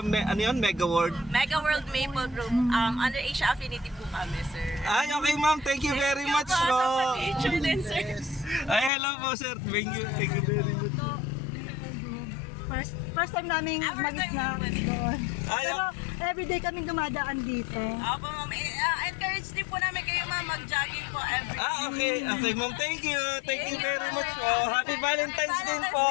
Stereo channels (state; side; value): drops out; right; at 8.9 s